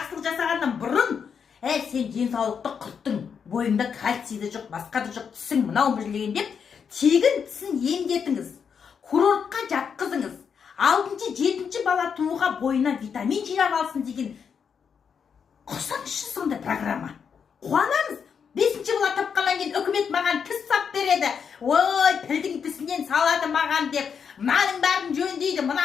жасағаннан бұрын, сен денсаулықты құрттың, бойыңда кальцийді жоқ, басқа да жоқ, тісің мынау білген деп, тегін тісін емдетіңіз, курортқа жатқызыңыз. 6-7 бесінші бала тууға бойына витамин жинап алсын деген құрсаңызшы сондай программа. Қуанамыз. Бесінші бала тапқаннан кейін үкімет маған тіс сап береді. Ой, пілдің тісінен салады маған деп, мынаның бәрін жөндейді,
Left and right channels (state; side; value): quieter; right; 6.8 dB